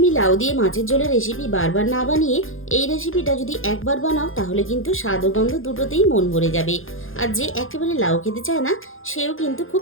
লাউ দিয়ে মাছের ঝোলের রেসিপি বারবার না বানিয়ে এই রেসিপিটা যদি একবার বানাও তাহলে কিন্তু স্বাদ ও গন্ধ দুটোতেই মন ভরে যাবে। আর যে একেবারে লাউ খেতে চায় না সেও কিন্তু খুব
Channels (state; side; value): late; right; 0.59 ms